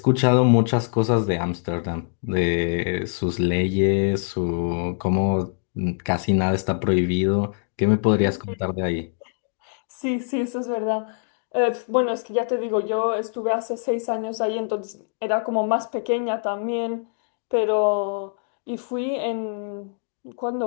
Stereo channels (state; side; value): silent; right; digital silence